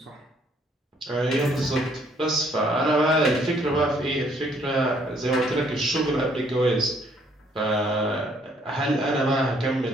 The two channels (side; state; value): both; normal; correlation 0.65